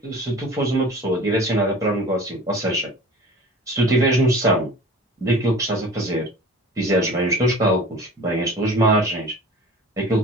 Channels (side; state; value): both; normal; correlation 0.41